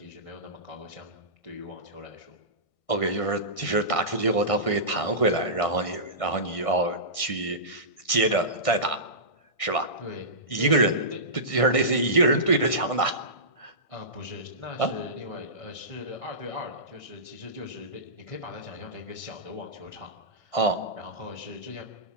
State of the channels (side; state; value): right; late; 1.6 ms